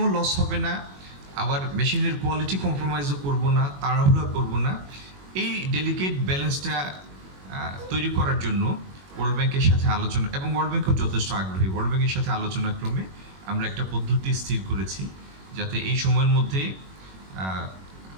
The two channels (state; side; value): late; left; 21 ms